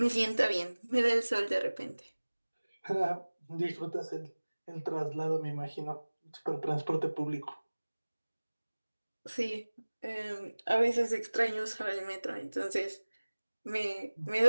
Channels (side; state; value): both; inverted; correlation -1.00